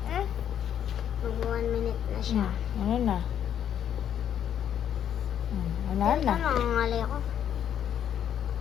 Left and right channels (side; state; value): right; quieter; 9.5 dB